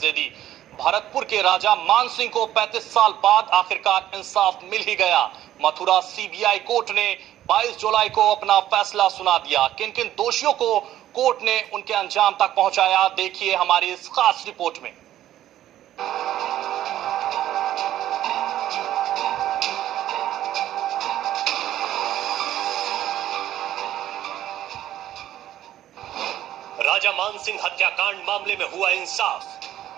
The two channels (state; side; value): quieter; left; 12.7 dB